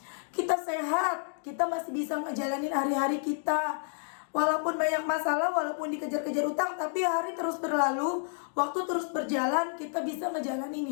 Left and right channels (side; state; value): right; silent; digital silence